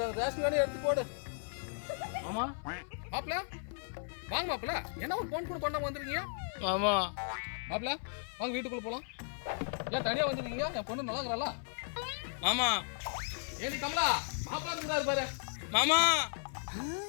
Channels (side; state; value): right; silent; 54 dB below the other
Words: ரேஷன் கடை எடுத்து போடு. ஆமா மாப்பிள வாங்க மாப்பிள, என்ன ஒரு போன் கூட பண்ணாம வந்துருக்கீங்க? மாமா மாப்பிள வாங்க வீட்டுக்குள்ள போலாம். ஏன் தனியா வந்துருக்கீங்க? என் பொண்ணு நல்லா இருக்கிறாளா? மாமா ஏனி கமலா மாப்பிள இருந்தாரு பாரு. மாமா